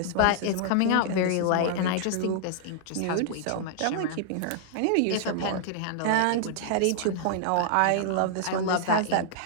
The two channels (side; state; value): both; different; correlation -0.01